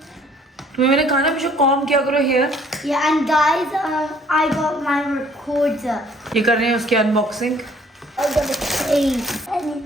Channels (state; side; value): normal; both; correlation 0.59